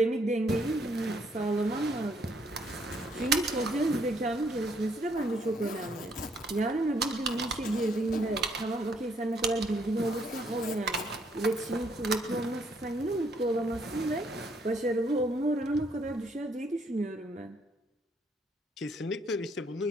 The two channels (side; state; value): both; normal; correlation 0.69